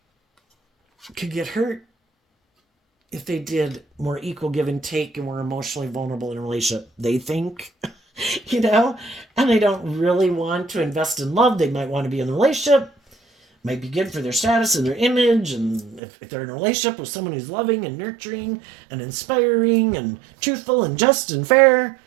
could get hurt if they did more equal give and take and were emotionally vulnerable in a relationship. They think, you know, and they don't really want to invest in love. They might want to be in a relationship. Might be good for their status and their image. And if they're in a relationship with someone who's loving and nurturing and inspiring and truthful and just and fair,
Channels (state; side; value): drops out; left; at 16.0 s